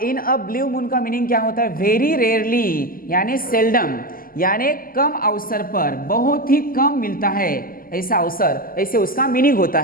इन अ ब्लू मून का मीनिंग क्या होता है, वेरी रेयरली यानी सेल्डम, यानी कम अवसर पर, बहुत ही कम मिलता है ऐसा अवसर, ऐसे उसका मीनिंग होता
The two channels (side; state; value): right; late; 0.42 ms